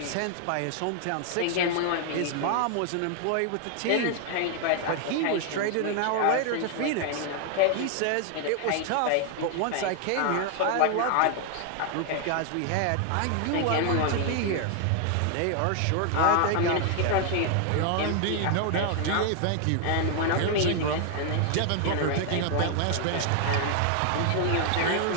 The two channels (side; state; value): both; different; correlation 0.00